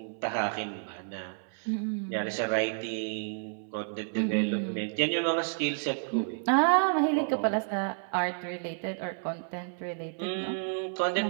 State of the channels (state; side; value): silent; left; 57 dB below the other